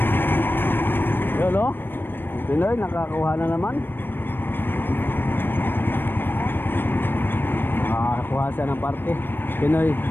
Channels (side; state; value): right; late; 0.097 ms